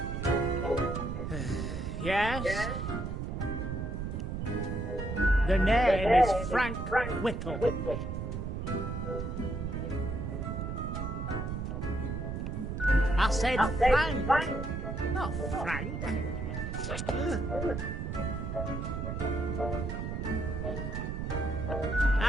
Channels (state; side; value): noise; right; rumble, 4 dB below the sound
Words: Yes? The name is Frank Whittle. I said Frank, not Frank.